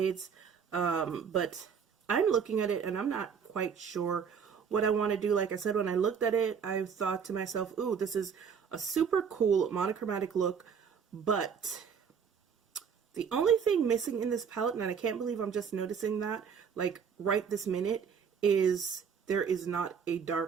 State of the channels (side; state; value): left; quieter; 6.8 dB